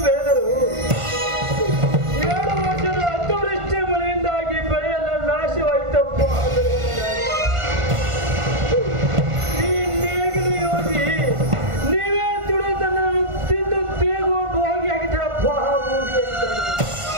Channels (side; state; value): left; late; 1.5 ms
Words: ಬೆಳೆದರು 2 ವರ್ಷದ ಅತಿವೃಷ್ಟಿ ಮಳೆಯಿಂದಾಗಿ ಬೆಳೆಯೆಲ್ಲ ನಾಶವಾಯಿತಪ್ಪ. ಈ ನೇಗಿಲು ಯೋಗಿ ನೀವೇ ದುಡಿದನ್ನು ತಿಂದು ತೇಗುವ ಭೋಗಿ ಆಗಿದ್ದಪ್ಪ.